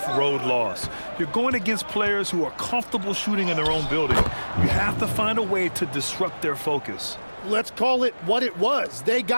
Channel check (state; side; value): inverted; both; correlation -1.00